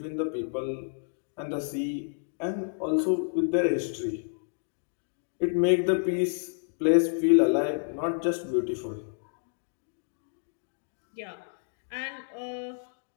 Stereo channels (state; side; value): silent; right; digital silence